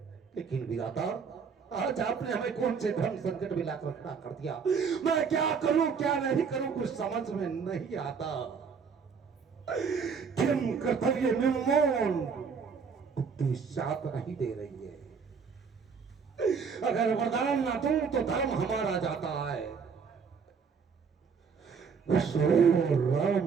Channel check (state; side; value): quieter; left; 5.9 dB